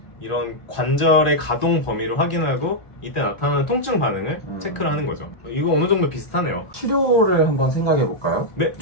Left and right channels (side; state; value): right; late; 1.4 ms